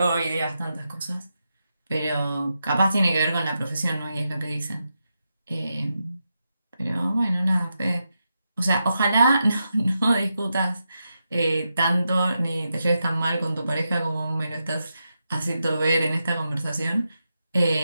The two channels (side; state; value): both; inverted; correlation -0.87